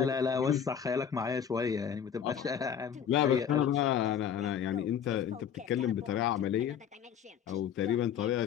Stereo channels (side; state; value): right; quieter; 8.3 dB